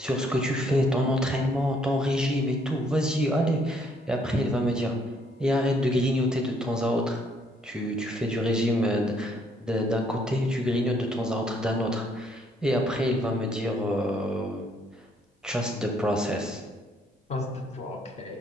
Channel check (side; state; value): both; normal; correlation 0.67